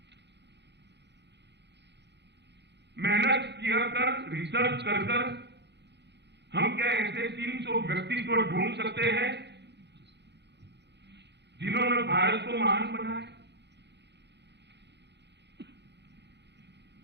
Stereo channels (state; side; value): late; left; 0.50 ms